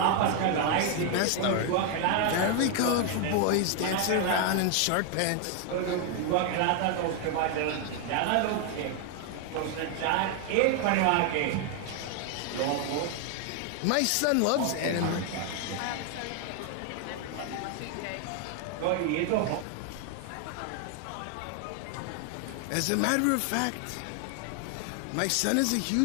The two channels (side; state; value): both; different; correlation 0.00